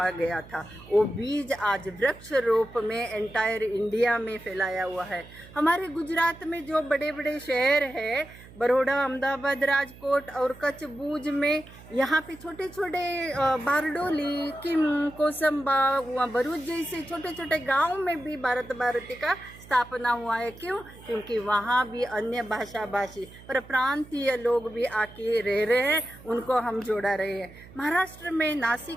गया था। वो बीज आज वृक्ष रूप में एंटायर इंडिया में फैलाया हुआ है। हमारे गुजरात में जो बड़े बड़े शहर है, बड़ौदा, अहमदाबाद, राजकोट और कच्छ, भूज में, यहाँ पे छोटे छोटे बारडोली, किम, कोसंबा, भरूच जैसे छोटे छोटे गाँव में भी भारत भारती का स्थापना हुआ है। क्यों? क्योंकि वहाँ भी अन्य भाषा भाषी पर प्रांतीय लोग भी आके रह रहे हैं, उनको हम जोड़ा रहे हैं। महाराष्ट्र में,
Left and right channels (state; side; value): noise; right; hum, 20 dB below the sound